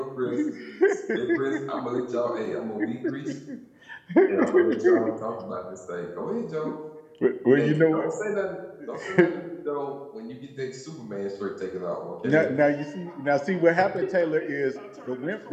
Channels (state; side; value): identical; both; correlation 1.00